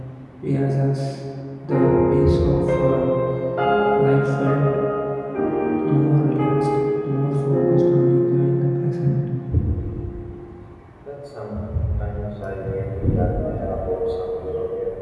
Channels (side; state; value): both; identical; correlation 1.00